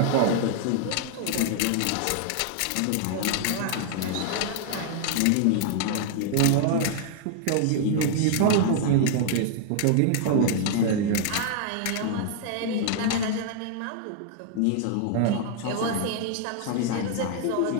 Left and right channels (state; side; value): different; both; correlation 0.00